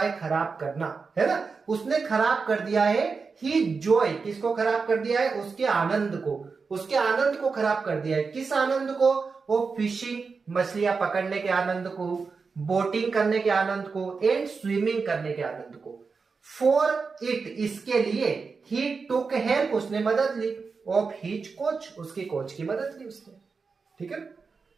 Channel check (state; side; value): quieter; left; 4.8 dB